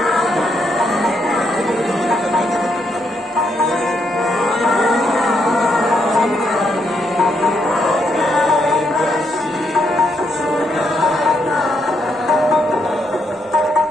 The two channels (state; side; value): normal; both; correlation 0.77